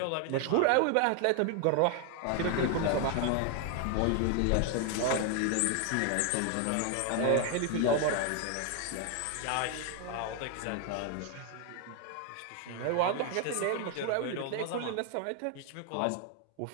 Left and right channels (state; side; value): different; both; correlation 0.01